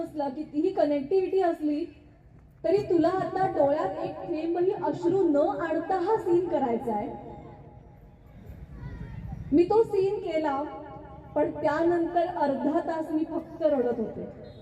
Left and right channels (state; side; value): identical; both; correlation 1.00